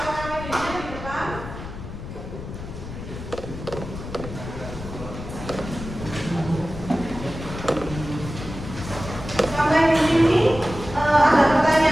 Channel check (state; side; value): noise; left; rumble, 10 dB below the sound